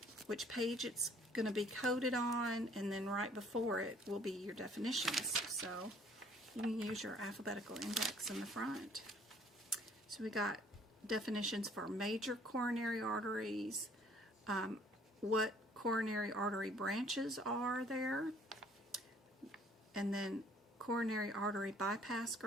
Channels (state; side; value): normal; both; correlation 0.58